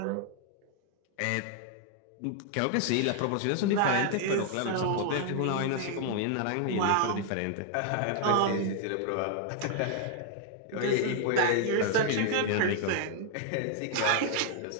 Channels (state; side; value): different; both; correlation 0.00